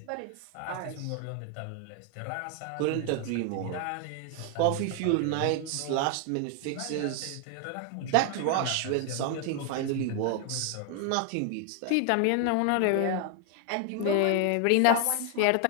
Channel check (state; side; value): different; both; correlation 0.00